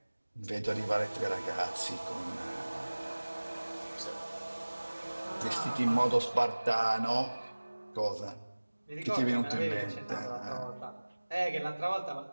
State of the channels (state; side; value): inverted; both; correlation -1.00